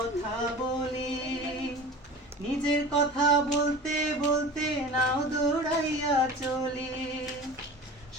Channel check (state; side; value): normal; both; correlation 0.37